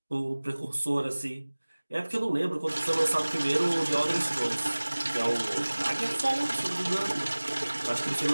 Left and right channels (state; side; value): inverted; both; correlation -1.00